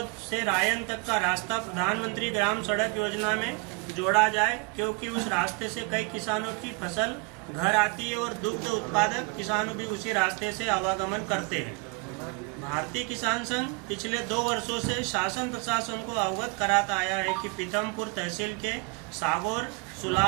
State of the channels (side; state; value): left; quieter; 31.9 dB